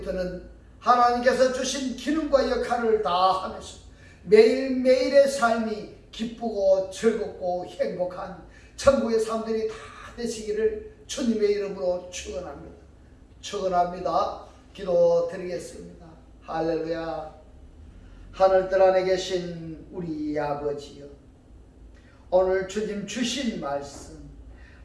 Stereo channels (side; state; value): both; identical; correlation 1.00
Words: 하나님께서 주신 기능과 역할을 다 하면서 매일매일의 삶이 기쁘고 즐겁고 행복한 천국의 사람들이 다 되시기를 주님의 이름으로 축원합니다. 축원합니다. 기도 드리겠습니다. 할렐루야. 하늘들 안에 계신 우리 아버지여, 오늘 주님 주신 말씀,